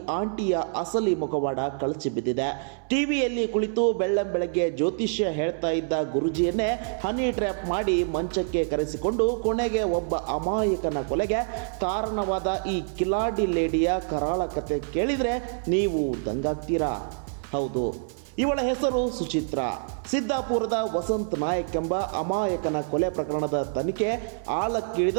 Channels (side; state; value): left; silent; 61 dB below the other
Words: ಆಂಟಿಯ ಅಸಲಿ ಮುಖವಾಡ ಕಳಚಿ ಬಿದ್ದಿದೆ. ಟಿವಿಯಲ್ಲಿ ಕುಳಿತು ಬೆಳ್ಳಂಬೆಳಗ್ಗೆ ಜ್ಯೋತಿಷ್ಯ ಹೇಳ್ತಾ ಇದ್ದ ಗುರುಜಿಯನ್ನೇ ಹನಿ ಟ್ರ್ಯಾಪ್ ಮಾಡಿ ಮಂಚಕ್ಕೆ ಕರೆಸಿಕೊಂಡು ಕೊನೆಗೆ ಒಬ್ಬ ಅಮಾಯಕನ ಕೊಲೆಗೆ ಕಾರಣವಾದ ಈ ಕಿಲಾಡಿ ಲೇಡಿಯ ಕರಾಳ ಕತೆ ಕೇಳಿದರೆ ನೀವು ದಂಗಾಗ್ತೀರಾ. ಹೌದು, ಇವಳ ಹೆಸರು ಸುಚಿತ್ರಾ. ಸಿದ್ದಾಪುರದ ವಸಂತ್ ನಾಯಕ್ ಎಂಬ ಅಮಾಯಕನ ಕೊಲೆ ಪ್ರಕರಣದ ತನಿಖೆ